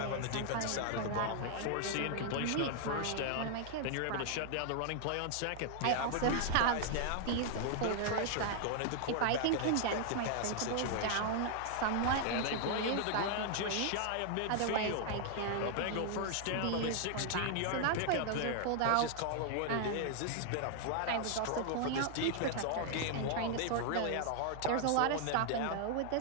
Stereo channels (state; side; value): different; both; correlation 0.00